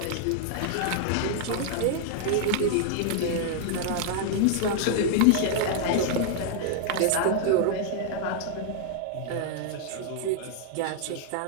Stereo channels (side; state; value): both; different; correlation -0.01